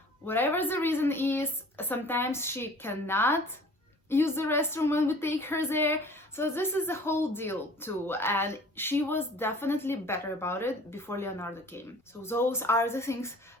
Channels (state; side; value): normal; both; correlation 0.48